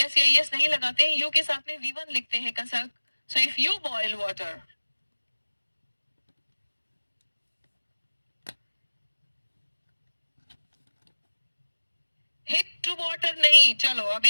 या एस नहीं लगाते हैं. यू के साथ में V1 लिखते हैं कसक. So if you boil water. Hit to water नहीं. चलो अब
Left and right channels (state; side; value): inverted; both; correlation -1.00